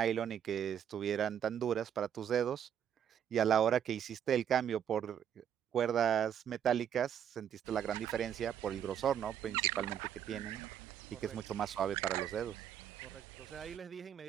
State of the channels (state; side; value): quieter; left; 9.3 dB